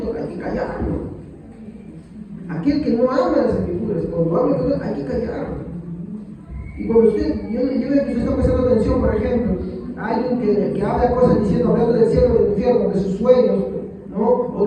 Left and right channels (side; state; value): both; identical; correlation 1.00